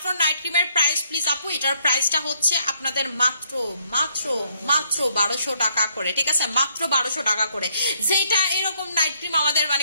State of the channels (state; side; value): inverted; both; correlation -0.70